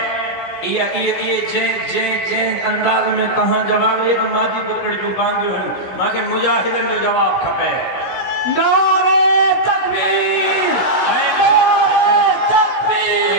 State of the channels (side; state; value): right; late; 16 ms